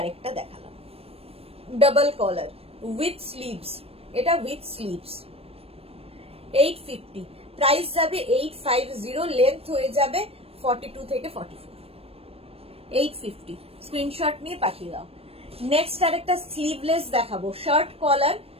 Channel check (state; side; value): late; left; 0.28 ms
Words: দেখালাম ডাবল কলার উইথ স্লিভস, এটা উইথ স্লিভস। 850, প্রাইস যাবে 850, লেন্থ হয়ে যাবে 42 থেকে 44। 850, স্ক্রিনশট নিয়ে পাঠিয়ে দাও। নেক্সট আরেকটা স্লিভলেস দেখাবো, শার্ট কলার